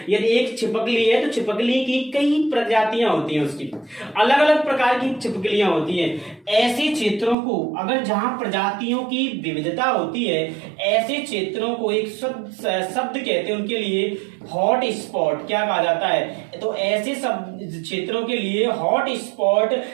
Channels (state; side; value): drops out; left; at 7.4 s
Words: यदि एक छिपकली है तो छिपकली की कई प्रजातियां होती हैं, उसकी अलग अलग प्रकार की छिपकलियां होती हैं। ऐसे क्षेत्रों को, अगर जहां प्रजातियों की विविधता होती है, ऐसे क्षेत्रों को एक शब्द कहते हैं उनके लिए हॉट स्पॉट, क्या कहा जाता है, तो ऐसे सब क्षेत्रों के लिए हॉट स्पॉट